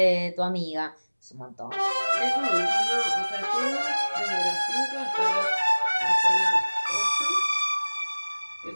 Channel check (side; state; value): both; inverted; correlation -1.00